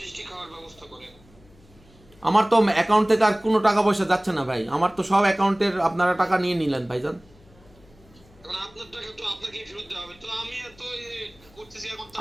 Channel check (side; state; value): left; noise; hum, 27 dB below the sound